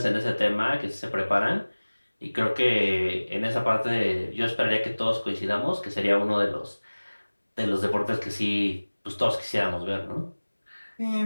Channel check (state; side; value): inverted; both; correlation -1.00